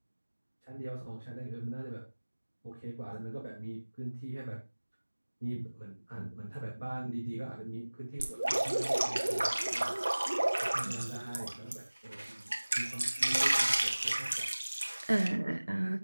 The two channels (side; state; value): both; inverted; correlation -1.00